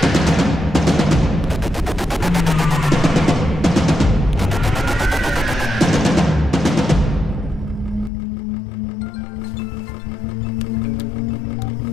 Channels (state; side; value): drops out; right; at 8.1 s